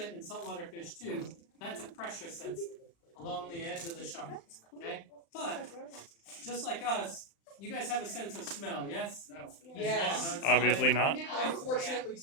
in saltwater fish too, that's a pressure sensor along the edge of the shark. Okay? But, just like us, you guys have a sense of smell, yes? No. Yes. Obviously not. Unfortunately,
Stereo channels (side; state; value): right; late; 35 ms